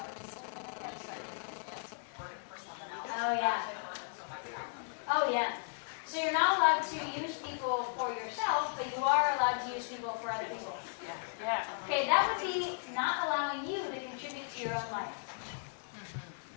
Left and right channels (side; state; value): right; silent; digital silence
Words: For someone else. Oh, yeah. Oh, yeah. So you're not allowed to use people for yourself, but you are allowed to use people for other people. Yeah. Okay, that would be not allowing you to contribute to your own life.